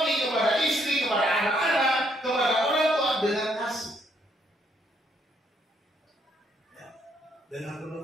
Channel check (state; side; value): normal; both; correlation 0.71